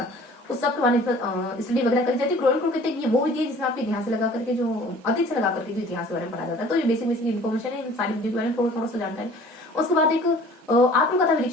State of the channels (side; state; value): both; normal; correlation 0.49